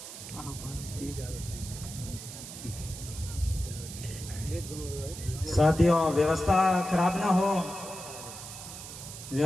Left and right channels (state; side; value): noise; right; hiss, 11 dB below the sound